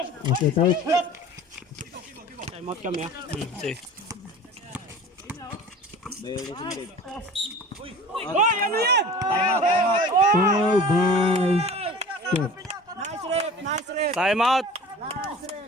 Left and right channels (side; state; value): both; normal; correlation 0.41